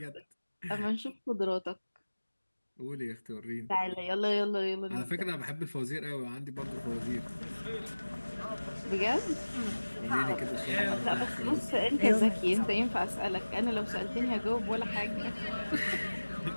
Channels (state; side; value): inverted; both; correlation -1.00